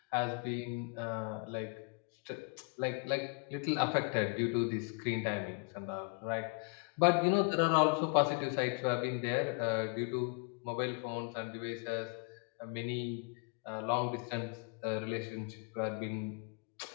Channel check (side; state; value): right; quieter; 33.6 dB